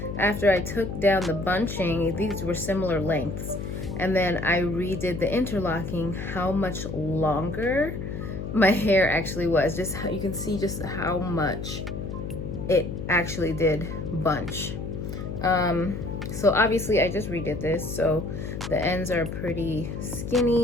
after I took down the bunching, these were similar lengths. And then I redid the interlocking, how much longer my hair actually was. Just how you can see just how much it actually did bunch. So obviously I just redid this, so the ends are pretty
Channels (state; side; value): noise; left; hum, 6 dB below the sound